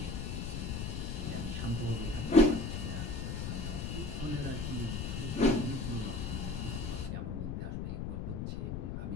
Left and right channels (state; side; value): noise; left; rumble, 3 dB below the sound